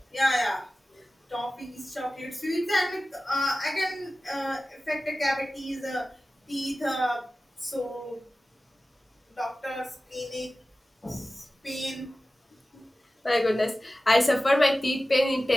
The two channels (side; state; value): both; normal; correlation 0.96